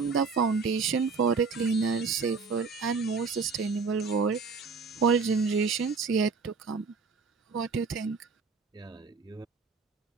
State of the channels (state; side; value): quieter; left; 4.9 dB